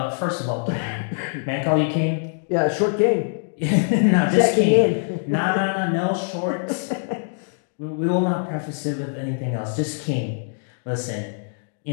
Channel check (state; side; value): silent; right; digital silence